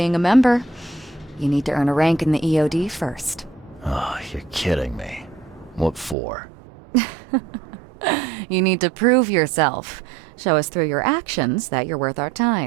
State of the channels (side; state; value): left; drops out; at 6.2 s